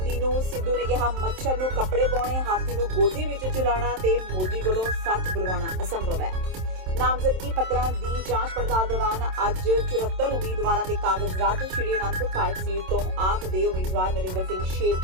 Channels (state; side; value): late; left; 27 ms